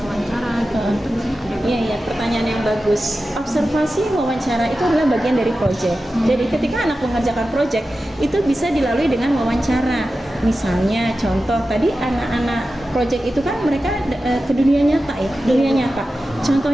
wawancara gitu. Itu di sini ada. Iya, pertanyaan yang bagus. Observasi, wawancara itu adalah bagian dari project. Jadi ketika anak mengerjakan project itu bisa dilalui dengan wawancara. Misalnya contoh tadi anak-anak project itu kan mereka ke dunia nyata ya, dunia nyata.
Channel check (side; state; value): both; normal; correlation 0.93